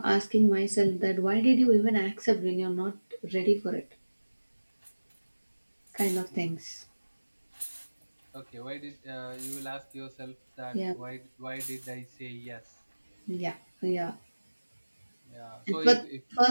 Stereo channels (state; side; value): inverted; both; correlation -1.00